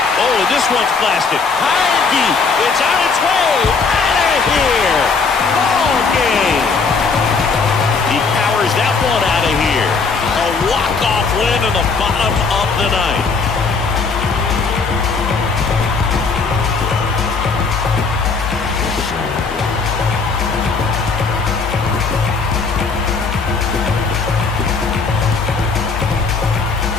Oh, and this one's blasted. High and deep. It's on its way. Out of here. Ball game. He powers that one out of here. A walk-off win in the bottom of the ninth.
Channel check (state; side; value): quieter; right; 4.7 dB